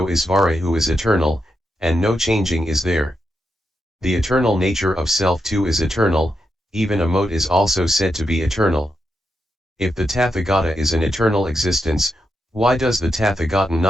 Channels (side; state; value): both; normal; correlation 0.85